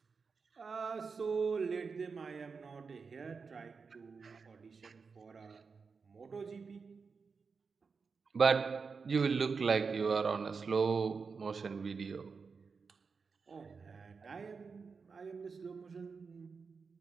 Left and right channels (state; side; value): quieter; left; 5.1 dB